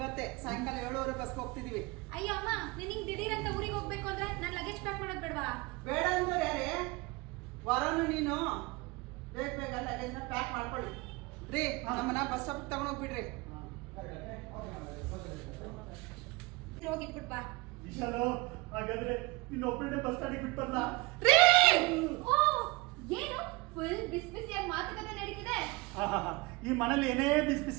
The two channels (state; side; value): quieter; left; 24.3 dB